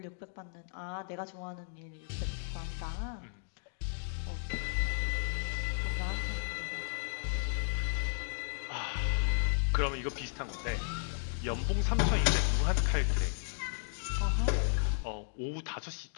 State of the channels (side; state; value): right; silent; digital silence